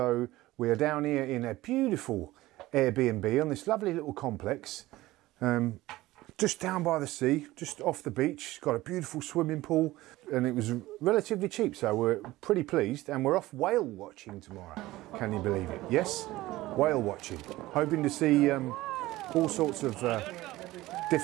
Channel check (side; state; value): left; quieter; 17.6 dB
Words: we are down here in a beautiful Airbnb on this lovely little complex. Just down by the sea, just off the beach. It's got a beautiful swimming pool and it was relatively cheap, so we're pretty pleased, and we're off whale watching tomorrow. Can you believe it? Yes, whale watching. Hoping to see all sorts of